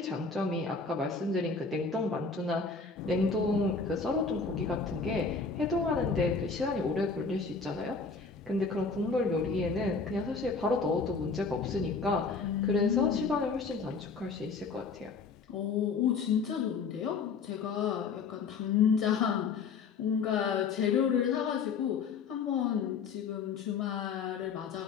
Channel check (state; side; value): quieter; right; 4.9 dB